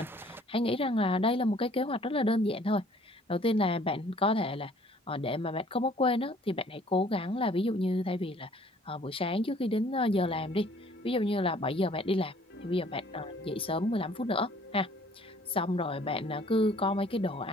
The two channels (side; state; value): both; normal; correlation 0.57